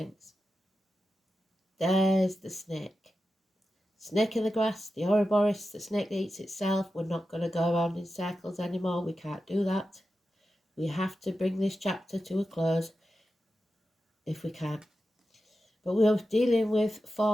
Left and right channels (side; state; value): both; normal; correlation 0.91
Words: There's the snake. Snake in the grass, the Ouroboros, the snake that eats itself. We're not going to go around in circles anymore. We can't do that. We have to bring this chapter to a close if we can. But we're dealing with